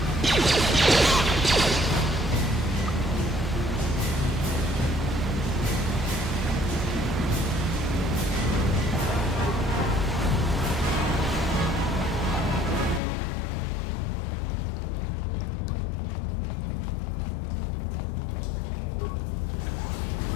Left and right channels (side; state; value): right; drops out; at 13.0 s